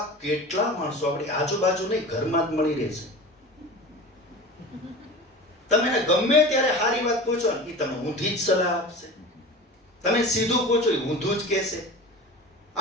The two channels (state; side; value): normal; both; correlation 0.34